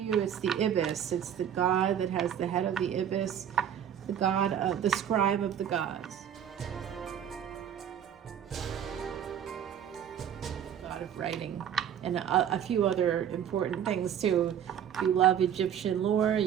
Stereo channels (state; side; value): quieter; left; 9.3 dB